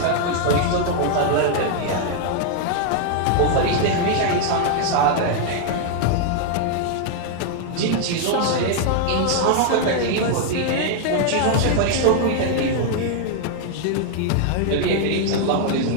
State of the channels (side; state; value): both; different; correlation 0.00